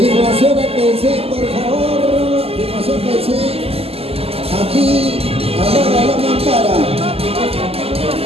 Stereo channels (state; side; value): late; left; 0.29 ms